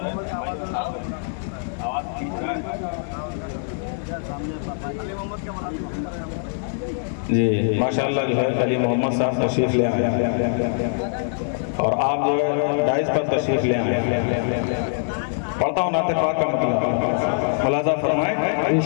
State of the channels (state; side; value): silent; right; digital silence